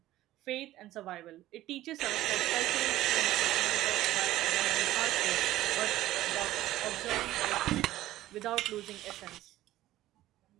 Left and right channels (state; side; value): quieter; left; 15.1 dB